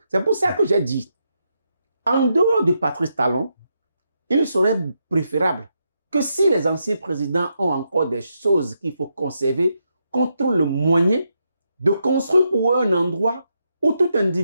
C'est pour ça que j'ai dit, en dehors de Patrice Talon, il serait préférable que si les anciens présidents ont encore des choses qu'il faut conserver, qu'on trouve le moyen de construire pour eux un endroit où tout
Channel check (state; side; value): inverted; both; correlation -0.82